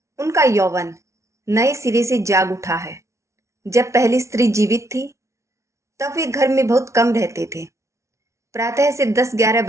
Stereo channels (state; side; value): late; left; 0.14 ms